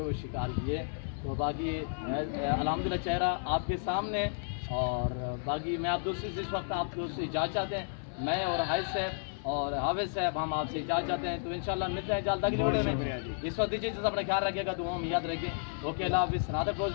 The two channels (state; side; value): silent; right; 56 dB below the other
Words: شکار کیے. تو باقی الحمدللہ چہرہ آپ کے سامنے. اور باقی میں آپ دوستوں سے اس وقت آپ دوست سے اجازت چاہتے ہیں. میں اور عائد صاحب اور حافظ صاحب ہم آپ سے اجازت چاہتے ہیں. تو انشاءاللہ ملتے ہیں جلد اگلی ویڈیو میں. اس وقت دیجیے اپنا خیال رکھیے گا, دعاؤں میں یاد رکھیں. اوکے اللہ حافظ. نادر